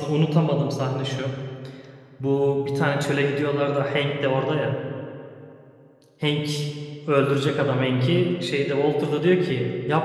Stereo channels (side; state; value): both; identical; correlation 1.00